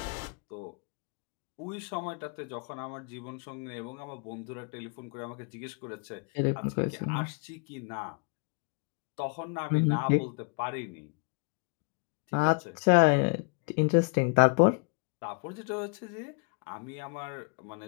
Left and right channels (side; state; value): right; quieter; 37.4 dB